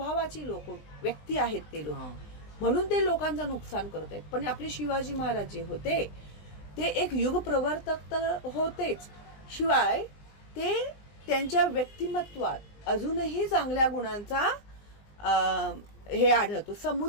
लोक व्यक्ती आहेत ते लोक, म्हणून ते लोकांचं नुकसान करत आहेत. पण आपले शिवाजी महाराज जे होते ते एक युग प्रवर्तक तर होतेच, शिवाय ते त्यांच्या व्यक्तिमत्वात अजूनही चांगल्या गुणांचा हे आढळतो.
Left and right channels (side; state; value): right; late; 20 ms